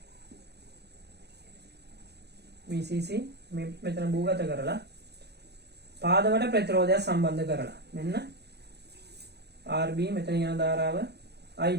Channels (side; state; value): left; late; 0.48 ms